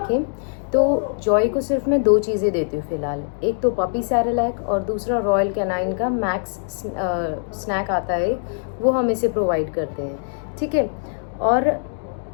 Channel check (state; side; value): silent; right; digital silence